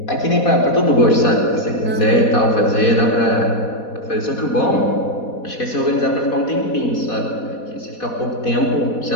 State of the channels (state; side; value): late; right; 4.1 ms